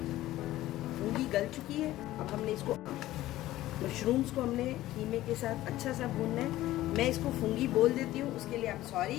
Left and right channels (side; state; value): right; quieter; 15.5 dB